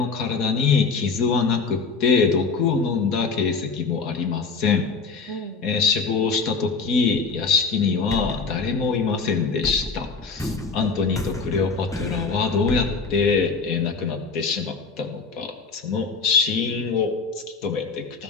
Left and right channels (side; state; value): right; quieter; 4.7 dB